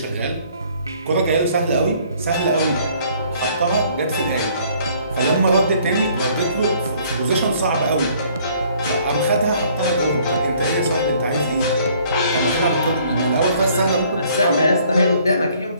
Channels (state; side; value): inverted; both; correlation -0.60